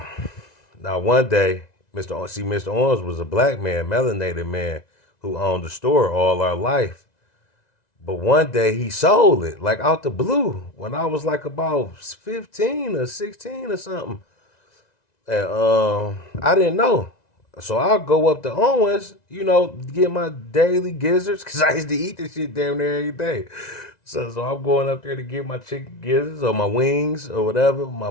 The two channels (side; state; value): right; late; 1.9 ms